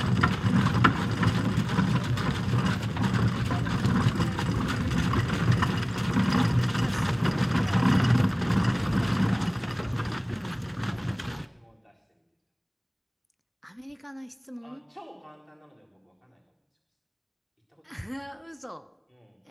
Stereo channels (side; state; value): both; identical; correlation 1.00